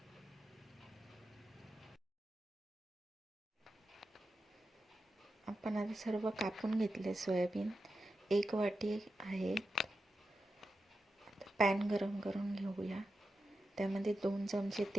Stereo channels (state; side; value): normal; both; correlation 0.90